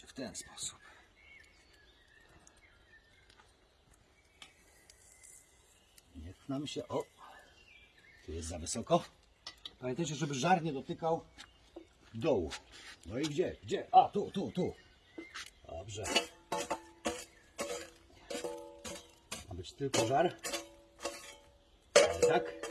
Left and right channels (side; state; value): both; identical; correlation 1.00